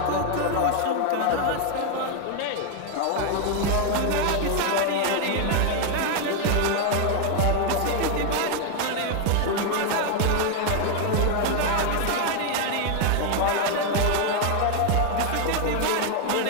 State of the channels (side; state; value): both; different; correlation 0.01